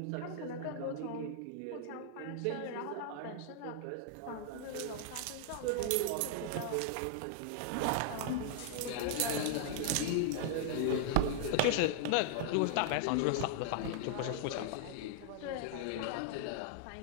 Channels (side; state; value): both; different; correlation -0.01